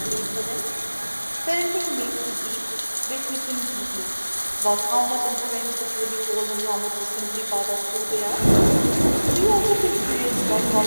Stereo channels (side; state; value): both; inverted; correlation -1.00